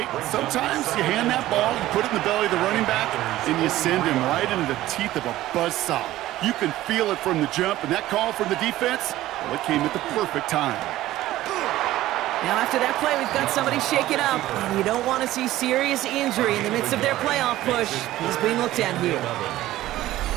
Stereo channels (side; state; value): left; quieter; 15.3 dB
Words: sometimes you hand that ball, you put it in the belly of the running back, and you send him right into the teeth of a buzzsaw. You can feel it from the jump, and that call from the defense, well, it came at the perfect time. Now after that play, we've got somebody shaken up, and you don't want to see serious injury in the midst of their playoff push. He's being looked at here.